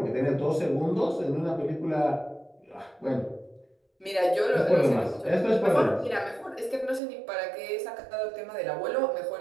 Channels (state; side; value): drops out; left; at 7.0 s